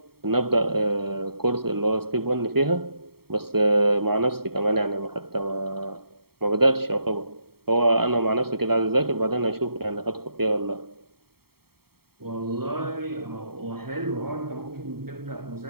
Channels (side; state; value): left; late; 0.95 ms